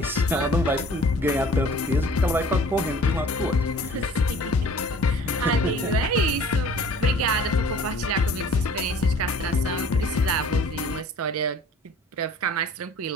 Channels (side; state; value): both; normal; correlation 0.50